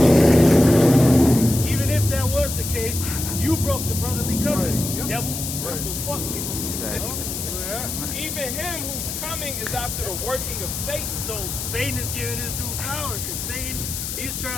Even if that was the case, you broke the brotherly covenant, Right. devil. Right. So fuck you. Exactly. Yeah. Even him who's coming is after the working of Satan. So Satan is giving his due power because Satan, he's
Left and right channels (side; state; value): left; noise; hiss, 5 dB below the sound